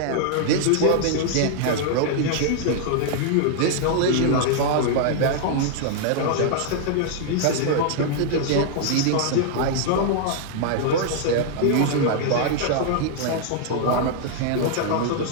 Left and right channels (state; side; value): different; both; correlation -0.01